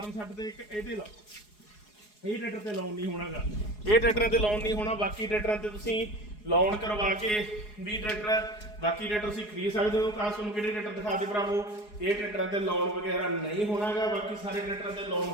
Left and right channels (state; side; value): late; right; 4.8 ms